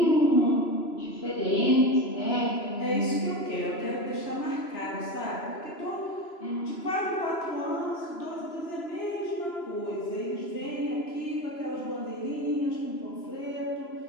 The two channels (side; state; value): right; late; 3.0 ms